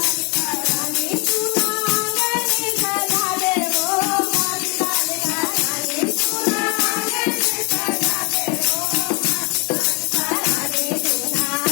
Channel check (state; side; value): quieter; right; 31.5 dB